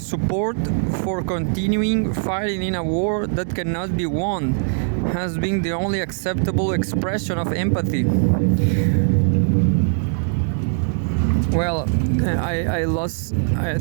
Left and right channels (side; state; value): left; silent; digital silence